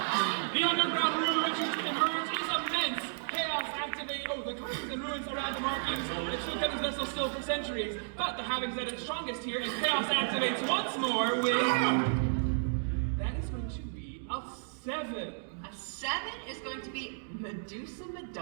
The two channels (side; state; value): left; silent; digital silence